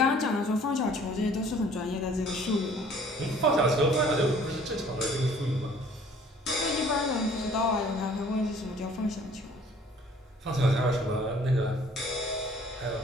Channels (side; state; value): both; normal; correlation 0.54